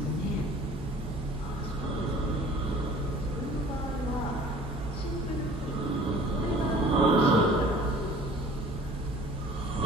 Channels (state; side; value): normal; both; correlation 0.49